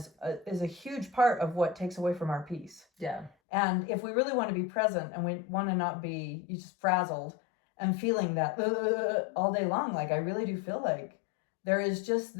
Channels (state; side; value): drops out; right; at 3.3 s